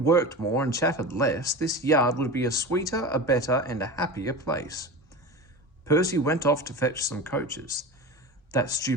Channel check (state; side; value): normal; both; correlation 0.30